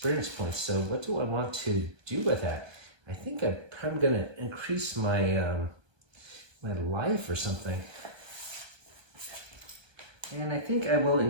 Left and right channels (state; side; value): late; left; 1.2 ms